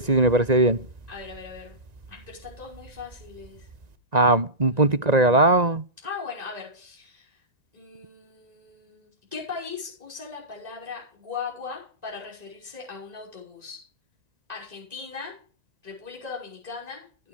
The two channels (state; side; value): late; left; 1.9 ms